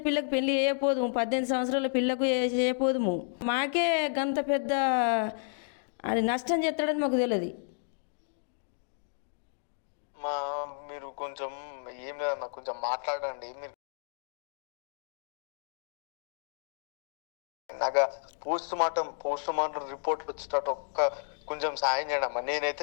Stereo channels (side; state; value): right; silent; digital silence